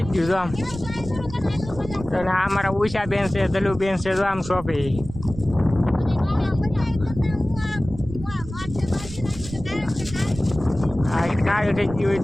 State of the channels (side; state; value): right; noise; rumble, 12 dB below the sound